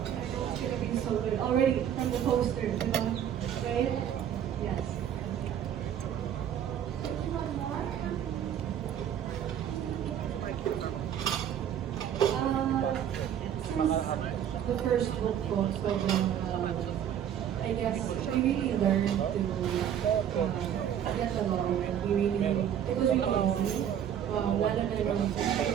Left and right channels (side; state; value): left; quieter; 9.6 dB